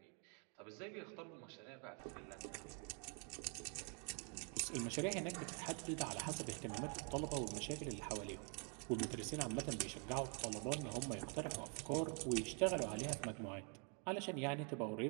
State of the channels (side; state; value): left; quieter; 38.5 dB